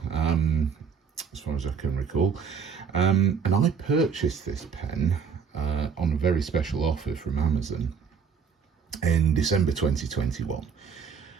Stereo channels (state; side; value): quieter; left; 6.4 dB